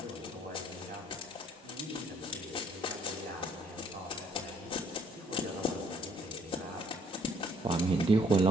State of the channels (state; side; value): normal; both; correlation 0.65